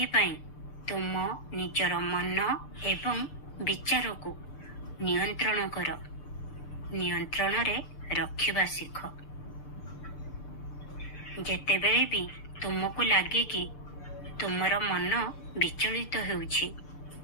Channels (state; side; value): late; right; 6.8 ms